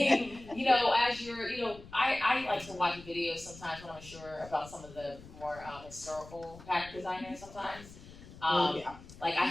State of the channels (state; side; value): noise; left; rumble, 18 dB below the sound